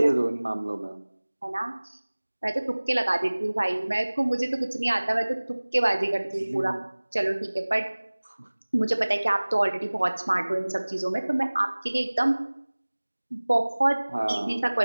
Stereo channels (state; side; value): inverted; both; correlation -1.00